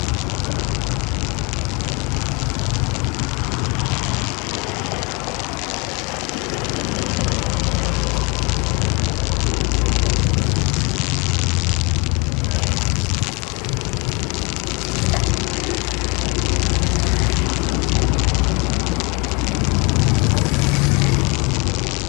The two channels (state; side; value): quieter; right; 30.3 dB